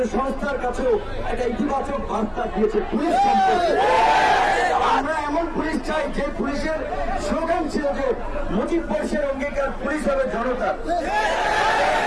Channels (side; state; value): both; identical; correlation 1.00